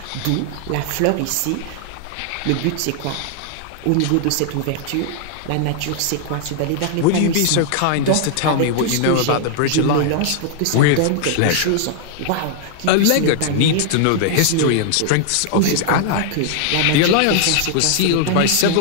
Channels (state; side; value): different; both; correlation 0.00